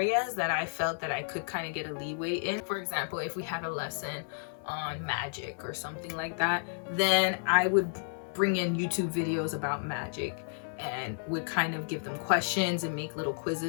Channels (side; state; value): right; silent; 57 dB below the other